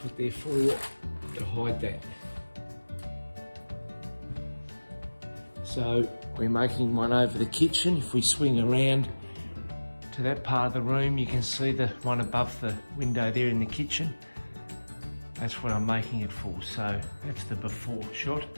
what they're for, to hide that. So we're making one over the kitchen. If we swing around to that part of the room, you can see the one above the window there in the kitchen. That's what I'm making it for, so that's the before shot.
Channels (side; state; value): both; inverted; correlation -1.00